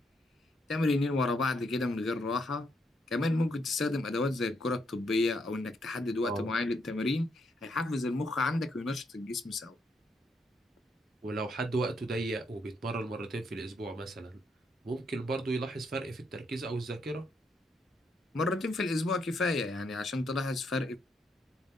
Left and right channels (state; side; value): normal; both; correlation 0.76